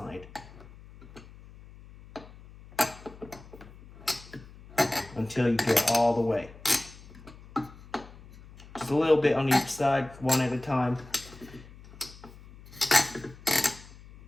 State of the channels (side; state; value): left; noise; hum, 20 dB below the sound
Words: Until you get all the way. Just a little bit on each side, one at a time.